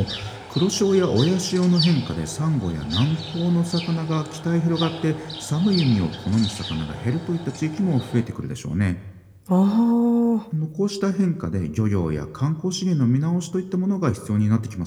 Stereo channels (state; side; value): identical; both; correlation 1.00